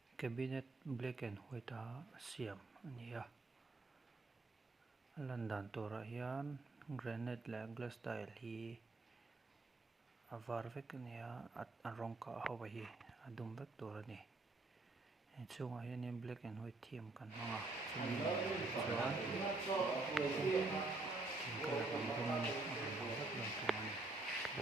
cabinet black and white a siam ania landan tora hian granite la glass tile hi avar vek ania a rawng kah ho hi a dum vek tur ani chungah hian black and white theme kan hmanga chuan colour kan rawng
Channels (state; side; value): quieter; left; 3.2 dB